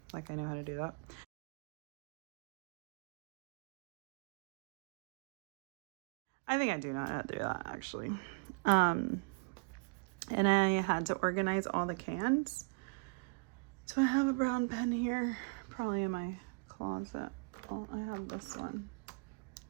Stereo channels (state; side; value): quieter; left; 34.2 dB